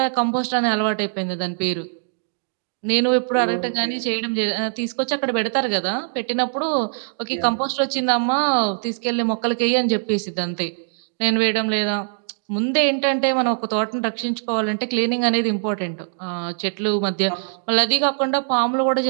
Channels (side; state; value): left; silent; digital silence